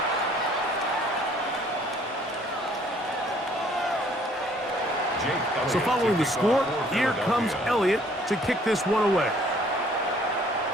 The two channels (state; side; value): normal; both; correlation 0.59